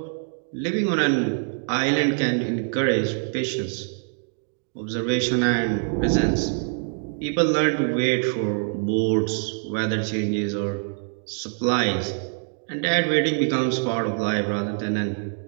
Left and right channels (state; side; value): silent; left; digital silence